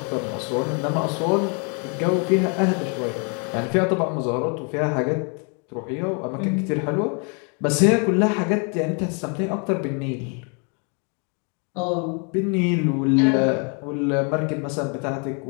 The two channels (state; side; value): quieter; right; 37.1 dB